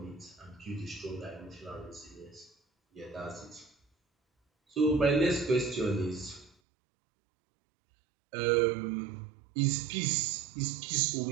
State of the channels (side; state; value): left; drops out; at 6.5 s